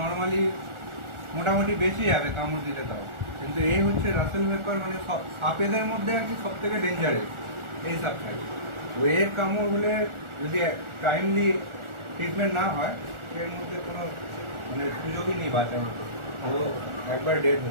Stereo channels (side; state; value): left; late; 1.4 ms